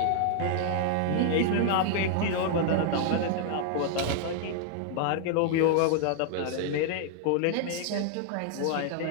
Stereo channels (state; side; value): different; both; correlation 0.00